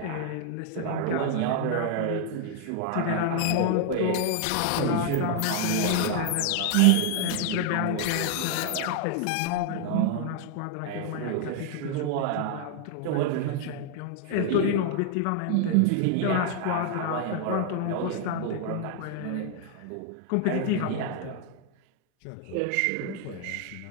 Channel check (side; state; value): both; different; correlation 0.00